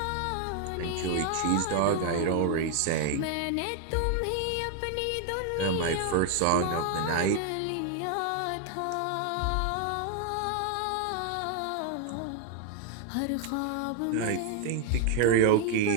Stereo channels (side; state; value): both; different; correlation 0.00